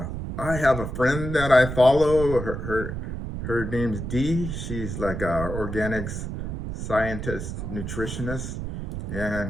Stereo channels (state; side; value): noise; right; rumble, 5 dB below the sound